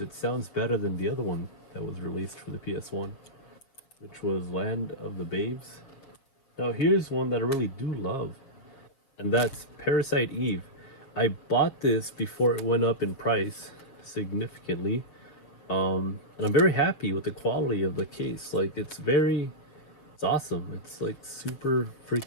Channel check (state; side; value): late; right; 7.1 ms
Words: sounds better than the other one that was released for the PS1, which was Land of the Babes. Now here's one that I really do love, and that's Parasite Eve. I bought this before it went up in price significantly, and I'm very happy with the quality of the case. Like it's awesome. It's like super